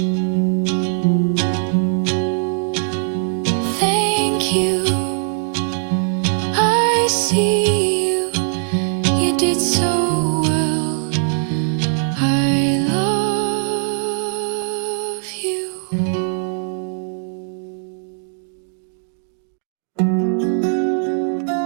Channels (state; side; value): silent; left; digital silence